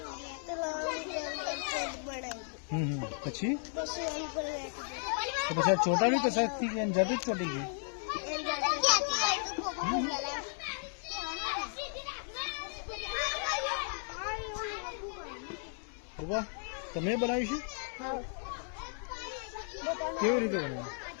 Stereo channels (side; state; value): right; silent; 55 dB below the other